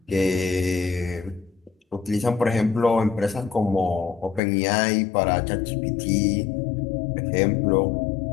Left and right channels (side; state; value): right; drops out; at 4.4 s